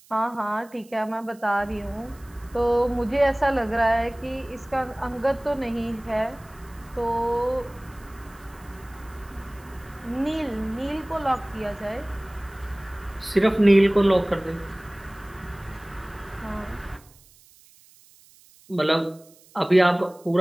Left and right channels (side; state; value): right; noise; hiss, 27 dB below the sound